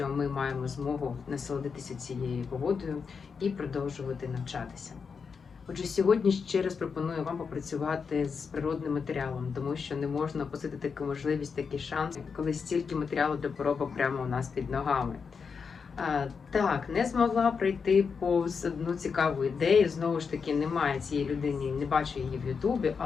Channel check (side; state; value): right; quieter; 5.7 dB